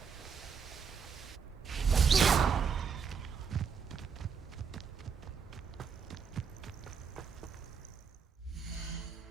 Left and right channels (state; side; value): quieter; left; 6.3 dB